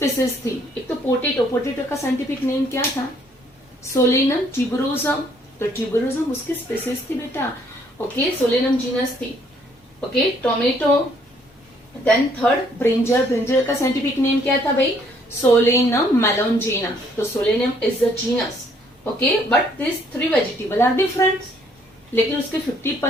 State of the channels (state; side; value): normal; both; correlation 0.65